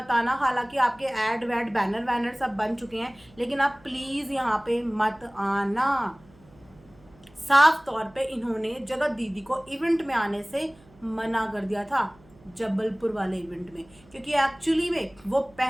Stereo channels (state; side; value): noise; right; hum, 27 dB below the sound